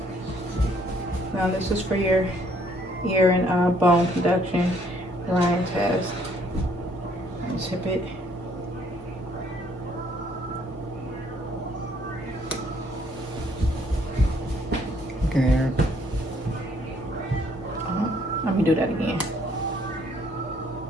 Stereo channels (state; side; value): normal; both; correlation 0.64